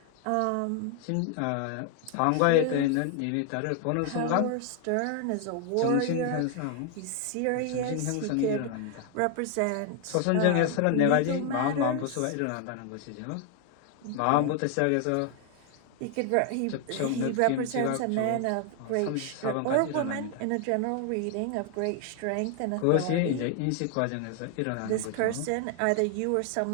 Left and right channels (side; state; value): both; different; correlation 0.00